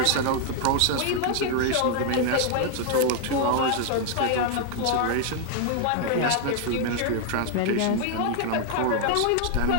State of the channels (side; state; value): both; different; correlation 0.00